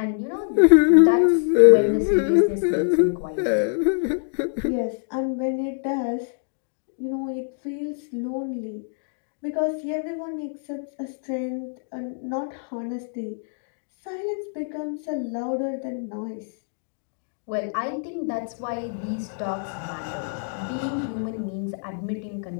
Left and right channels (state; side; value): silent; right; digital silence